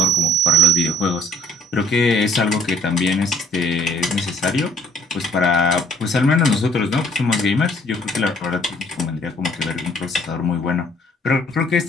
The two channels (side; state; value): both; normal; correlation 0.59